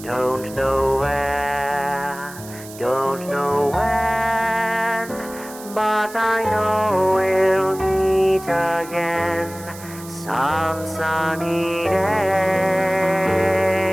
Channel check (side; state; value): right; noise; hiss, 17 dB below the sound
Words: Don't know where.